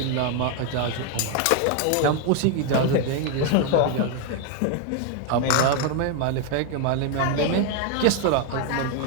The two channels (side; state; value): both; different; correlation 0.01